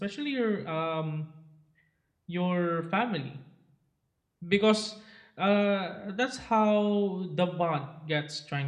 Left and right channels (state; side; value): identical; both; correlation 1.00